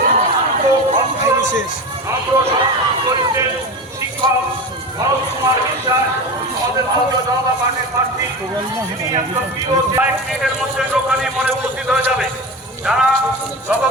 শিক্ষক ভরত কুমার বিশ্বাস আমাদের ভারতীয় জনতা পার্টির প্রার্থী, তিনি একজন প্রিয় 1 মিনিটের মধ্যে দোকানে মনে উপস্থিত হয়ে যাবে। যারা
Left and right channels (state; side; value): normal; both; correlation 0.26